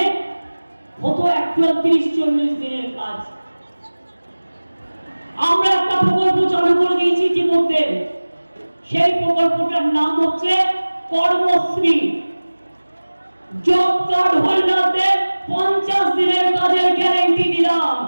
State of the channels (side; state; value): both; inverted; correlation -1.00